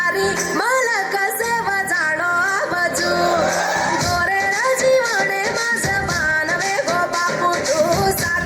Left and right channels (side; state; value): both; identical; correlation 1.00